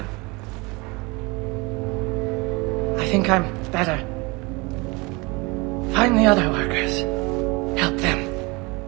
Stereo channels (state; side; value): quieter; left; 26.2 dB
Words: I think I'm better. Find the other workers. Help them.